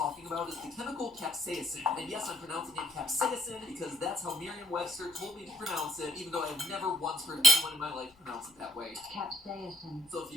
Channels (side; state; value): left; noise; rumble, 29 dB below the sound